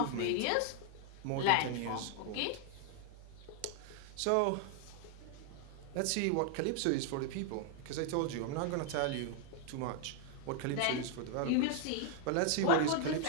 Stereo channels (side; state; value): both; different; correlation 0.00